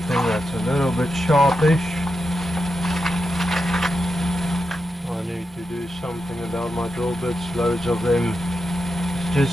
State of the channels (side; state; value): both; normal; correlation 0.87